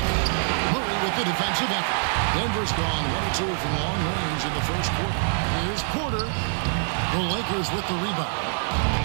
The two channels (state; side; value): silent; left; digital silence